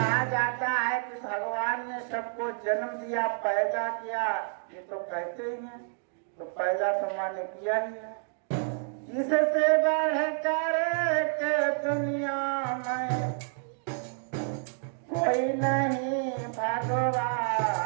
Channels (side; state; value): left; silent; 58 dB below the other